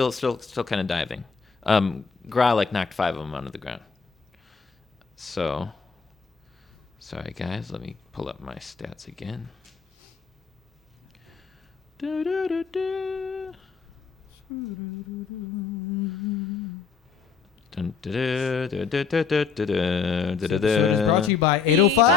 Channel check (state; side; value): quieter; right; 5.7 dB